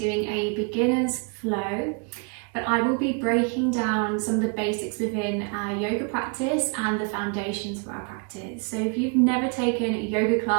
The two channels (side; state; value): left; quieter; 36.0 dB